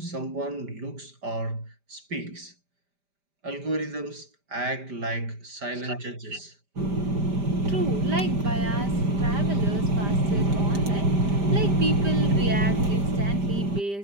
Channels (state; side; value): late; left; 5.0 ms